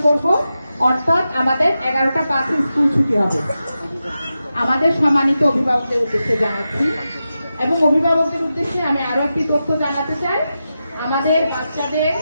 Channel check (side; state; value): both; inverted; correlation -0.90